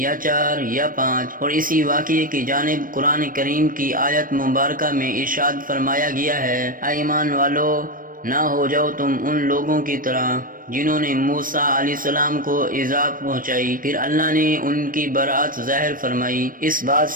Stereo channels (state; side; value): late; left; 0.40 ms